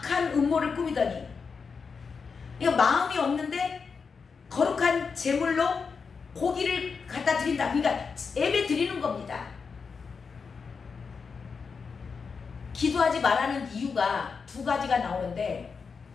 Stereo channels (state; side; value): quieter; right; 5.4 dB